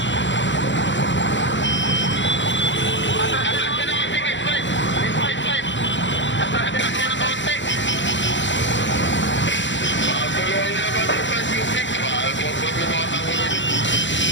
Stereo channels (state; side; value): late; right; 0.54 ms